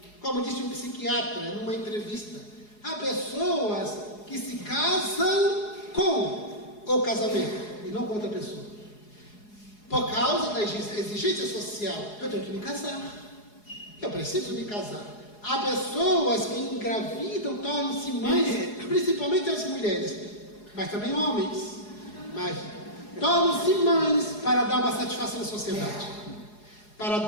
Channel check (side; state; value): right; late; 4.8 ms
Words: Como disse um psiquiatra numa entrevista, há pessoas que se casam com o casamento e não com outra pessoa. Por causa da exigência social, eu tenho que me casar. Eu preciso me casar. Há pessoas que engravidam, tornam-se mães, principalmente as mulheres, mas também homens. Mas tornam-se mães para dar uma satisfação à sociedade. Para